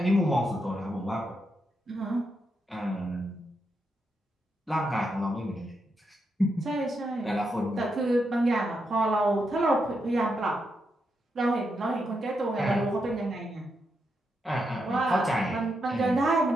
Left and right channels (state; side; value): normal; both; correlation 0.83